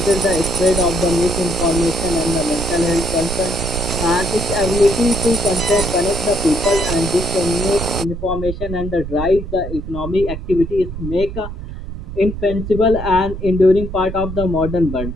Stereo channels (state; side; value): noise; right; rumble, 8 dB below the sound